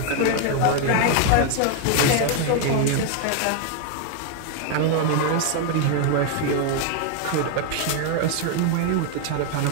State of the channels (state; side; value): different; both; correlation 0.00